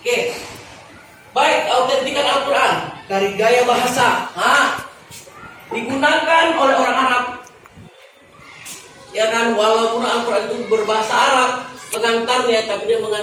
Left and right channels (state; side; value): identical; both; correlation 1.00